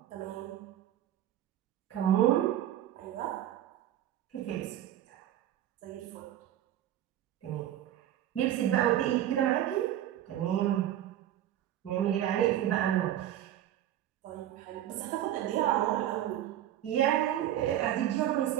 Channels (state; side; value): quieter; left; 12.1 dB